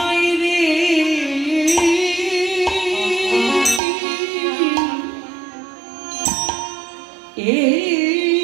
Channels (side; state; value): left; drops out; at 3.8 s